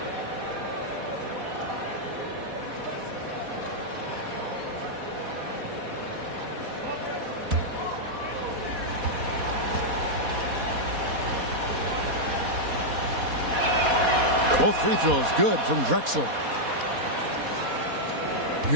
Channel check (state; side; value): late; left; 4.1 ms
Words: Both free throws good from Drexler.